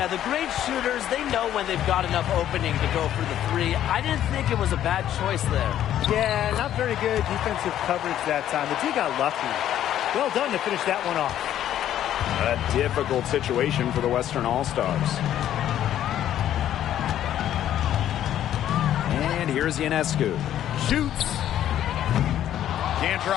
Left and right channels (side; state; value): right; quieter; 11.4 dB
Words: the great shooters, they know when they've got enough opening to go for the three. I didn't think it was a bad choice there. Yeah, not very good defensive coverage that time. The team got lucky. Well done to finish that one off. A difficult situation for the Western All-Stars. And here's Ionescu. Shoots. Can't